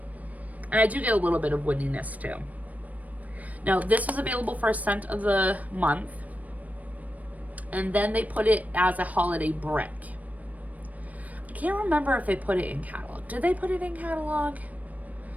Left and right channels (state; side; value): late; left; 0.072 ms